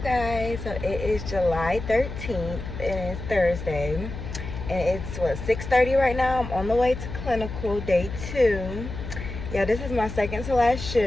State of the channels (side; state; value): left; noise; hum, 8 dB below the sound